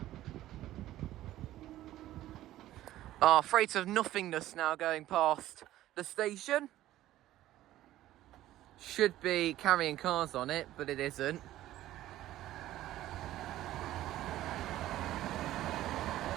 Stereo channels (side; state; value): left; quieter; 14.4 dB